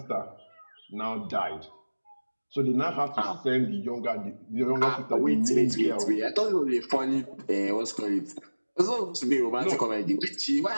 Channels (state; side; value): inverted; both; correlation -1.00